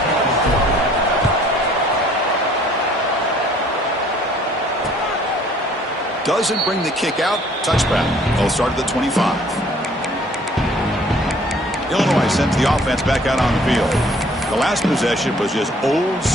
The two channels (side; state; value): both; normal; correlation 0.57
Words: Doesn't bring the kick out. Touchback. They'll start at the 25. Illinois sends the offense back out on the field. The last possession was just old